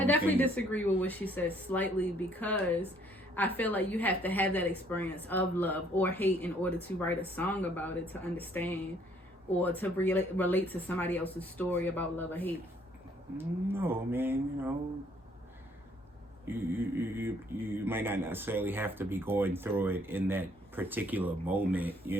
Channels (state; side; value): normal; both; correlation 0.63